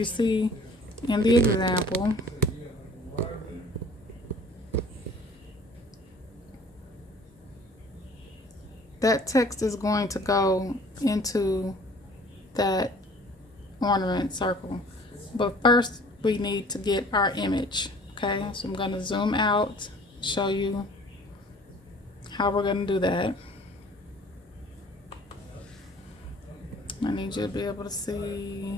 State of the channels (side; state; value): both; normal; correlation 0.51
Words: see in the example, that text is going to go into that ornament circle. But first we need to get our image. Okay, so I'm going to zoom out, show you how we're going to do that. I need you to be able to